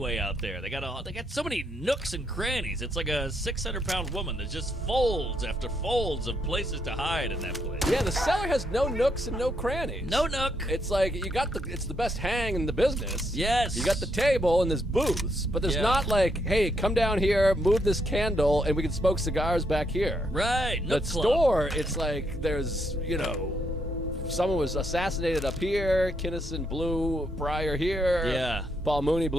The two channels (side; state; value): both; normal; correlation 0.76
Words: out there. They got so many nooks and crannies. It's like a 600-pound woman. There's just folds after folds of places to hide in that place. Yeah, the cellar has no nooks and no crannies. No nook. It's like it's the best hang in the business. Yes. You got the table and there's booths, but there's not like, hey, come down here, move this candle, and we can smoke cigars back here. Right. The Nook club. store, it's like there's, someone was assassinated up here, Kinnison blew Pryor here. Yeah. Paul Mooney